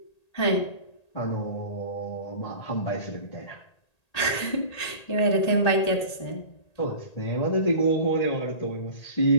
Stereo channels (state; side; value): late; right; 1.8 ms